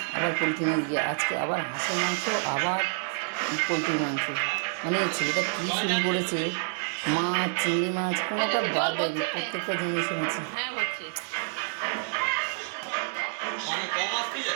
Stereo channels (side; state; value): left; silent; digital silence